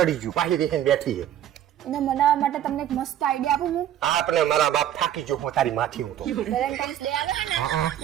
ગયું પાછી દેખીને બેઠી છે. એને મનાવવા માટે તમને એક મસ્ત આઈડિયા આપું હું. આપણે મારા બાપ થાકી ગયો હું તારી માથી હું તો વેલેન્ટાઇન્સ ડે આવે છે ને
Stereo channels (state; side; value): quieter; left; 11.2 dB